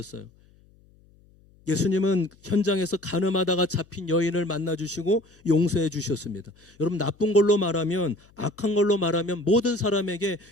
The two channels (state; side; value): noise; left; hum, 29 dB below the sound